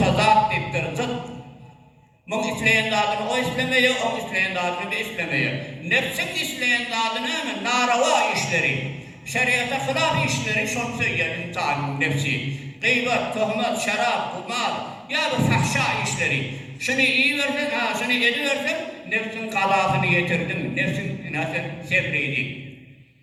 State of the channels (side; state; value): both; identical; correlation 1.00